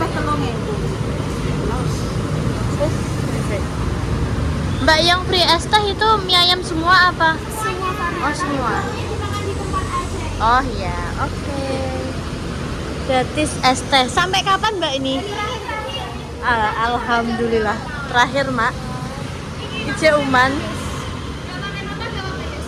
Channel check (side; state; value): both; identical; correlation 1.00